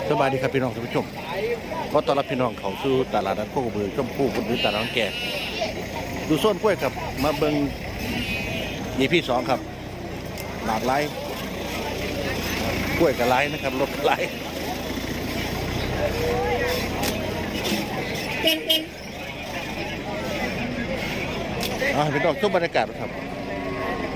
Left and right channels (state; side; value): identical; both; correlation 1.00